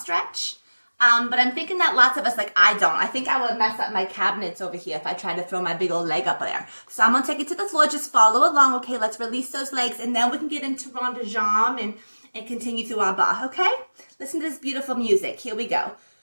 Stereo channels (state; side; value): inverted; both; correlation -1.00